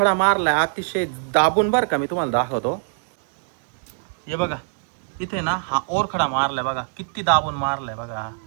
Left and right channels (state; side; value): silent; left; digital silence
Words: मारला अतिशय दाबून बरं का. मी तुम्हाला दाखवतो. हे बघा इथे ना हा ओरखडा मारलाय बघा, किती दाबून मारलाय बघा.